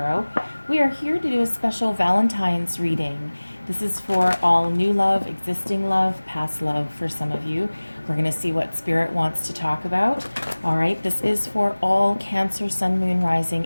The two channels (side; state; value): both; inverted; correlation -1.00